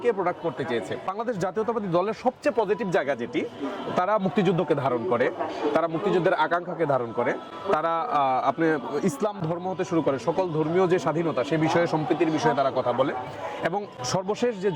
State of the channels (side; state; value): both; identical; correlation 1.00